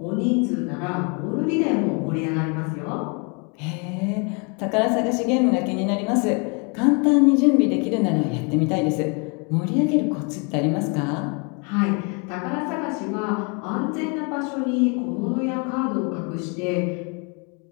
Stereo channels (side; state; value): right; quieter; 34.2 dB